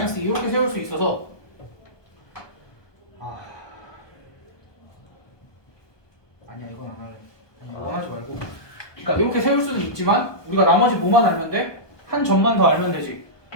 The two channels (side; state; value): right; late; 1.2 ms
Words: 2 이렇게 세울 수 있어서 아니야 이건 안 할래. 아니야 이건 하지 말고. 그러니까 이렇게 세울 수는 있지만 우리가 나머지 뭐만 알면 돼? 한 점만 더 알면 되지.